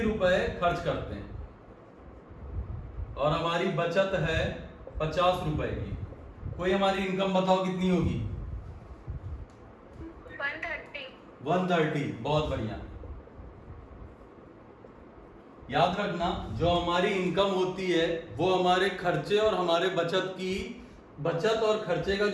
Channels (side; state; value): both; identical; correlation 1.00